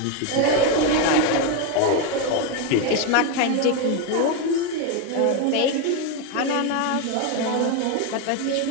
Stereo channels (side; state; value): both; different; correlation 0.02